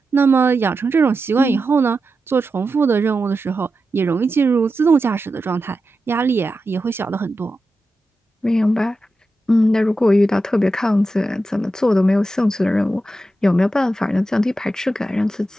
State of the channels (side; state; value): both; normal; correlation 0.90